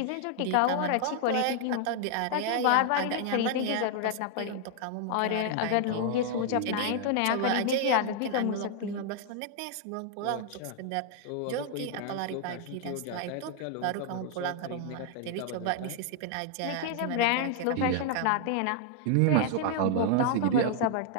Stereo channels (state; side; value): different; both; correlation 0.00